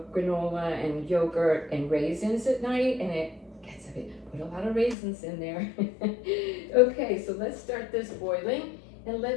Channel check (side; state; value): right; drops out; at 5.0 s